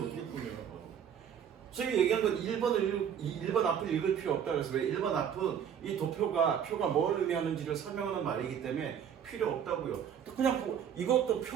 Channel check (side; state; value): left; quieter; 8.4 dB